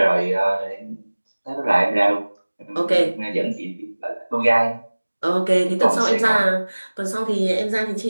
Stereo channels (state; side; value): inverted; both; correlation -1.00